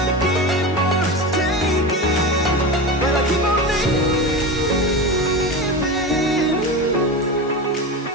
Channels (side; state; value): both; normal; correlation 0.24